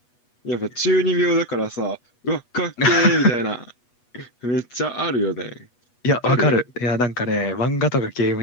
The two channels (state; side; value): late; right; 8.2 ms